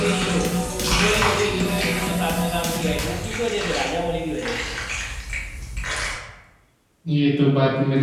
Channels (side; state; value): both; identical; correlation 1.00